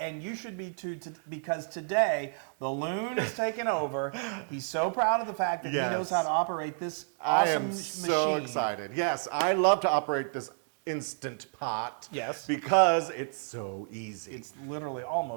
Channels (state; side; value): silent; left; digital silence